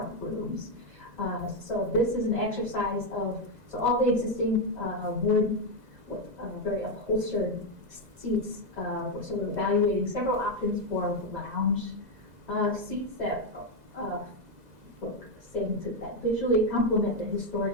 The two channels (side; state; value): left; late; 2.0 ms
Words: rooms. So this is an exercise of, so all the existing wood with very upholstered seats, so we're evaluating several options for lounge seats that we're saying that visually complement the